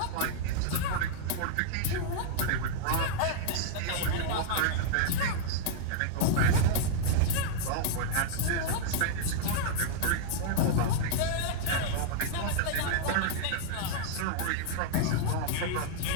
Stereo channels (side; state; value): both; different; correlation -0.01